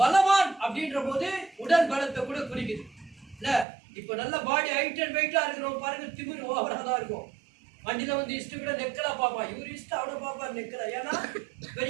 பலவான் அப்படின்ற போது உடல் பலத்தை கூட குறிக்குது இல்ல. இப்ப நல்ல பாடி ஹைட் அண்ட் வெயிட்டா இருக்கிறோம் பாருங்க, திமிரு ஓவரா தான் இருக்கும். வண்டியில வந்து இஷ்ட கூட நெக்கலா பாப்பா, இவரு இஷ்டம் அவனை பாப்பா நெக்கலா, ஏன்னா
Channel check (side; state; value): left; drops out; at 3.7 s